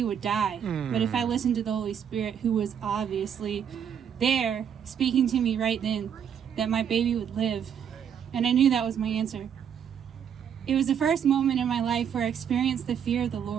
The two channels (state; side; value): quieter; left; 8.3 dB